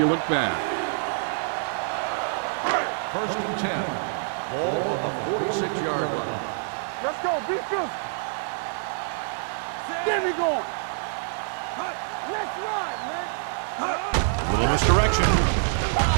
look bad. First and 10. Ball on the 46-yard line. Let's go, be good. There we go. Let's ride, man. A little misdirection.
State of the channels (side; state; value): left; silent; digital silence